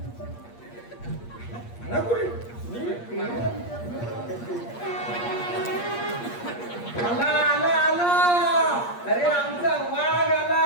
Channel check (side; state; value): right; late; 8.5 ms